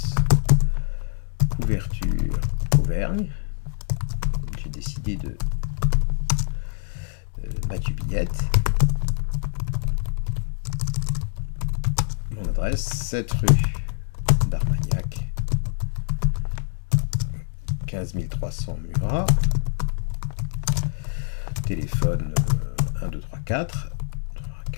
Couverture Auvergne. J'ai décidé de Mathieu Billette. Mon adresse, 7 rue d'Armagnac, 15 300 Murat. Téléphone 1, 2, 3, 4.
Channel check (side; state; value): right; silent; digital silence